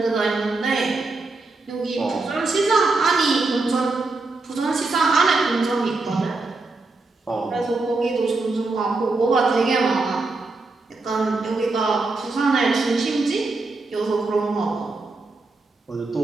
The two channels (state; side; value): quieter; left; 3.5 dB